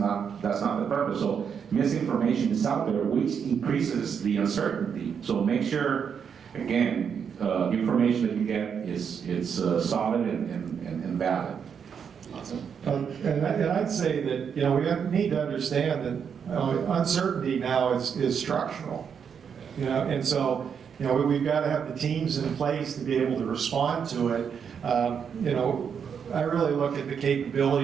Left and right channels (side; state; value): left; quieter; 7.1 dB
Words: purpose. So misinformation is out there, which increases the uncertainty. So make sure, again, information that you get is solid and valid. Awesome. And I'd say that, we need to understand that uncertainty now is structural. And so, we've got to have the teams in place to be able to respond to it. I really look at the